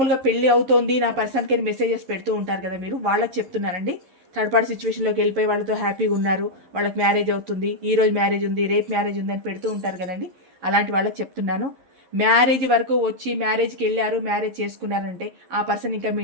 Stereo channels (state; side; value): late; left; 11 ms